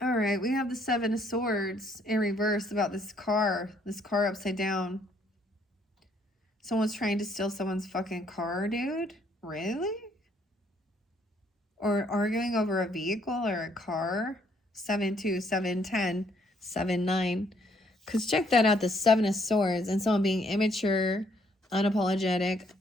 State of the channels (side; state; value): both; normal; correlation 0.67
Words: All right, we have the 7 of Swords in reverse about this car upside down. Someone's trying to steal someone's fucking car, dude? Really? Or arguing over a vehicle or a car? 7-2, 7-10, 7-9. Because check that out, the Seven of Swords, and someone being immature, unapologetic,